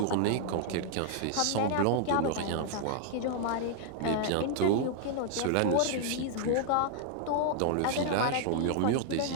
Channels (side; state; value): both; different; correlation -0.01